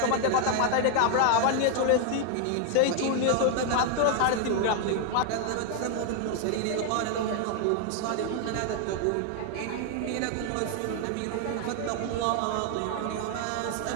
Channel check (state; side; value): different; both; correlation 0.00